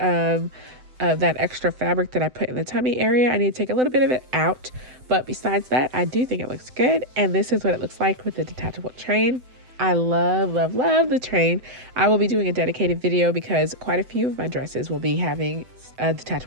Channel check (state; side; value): late; left; 7.9 ms